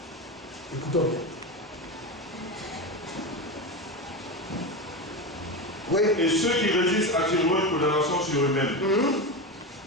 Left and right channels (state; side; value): normal; both; correlation 0.19